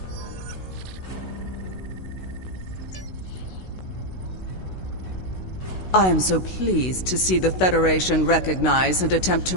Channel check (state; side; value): late; right; 16 ms